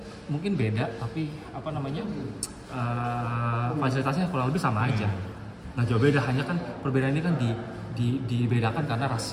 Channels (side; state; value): both; identical; correlation 1.00